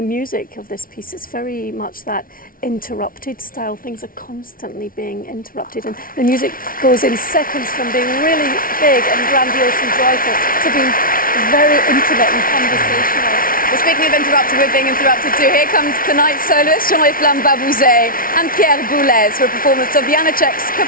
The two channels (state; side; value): late; right; 0.42 ms